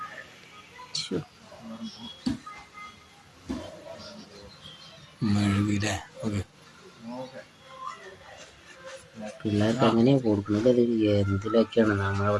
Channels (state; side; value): identical; both; correlation 1.00